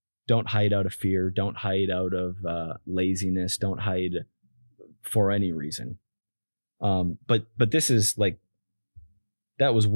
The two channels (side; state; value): both; inverted; correlation -1.00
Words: Don't hide out of fear. Don't hide out of laziness. Don't hide for any reason. But this is like, that was